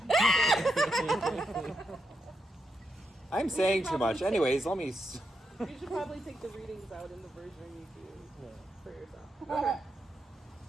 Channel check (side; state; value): both; normal; correlation 0.83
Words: I'm saying too much. probably Anyways, let me. You should probably take the readings out in the version you do for yourself. Okay.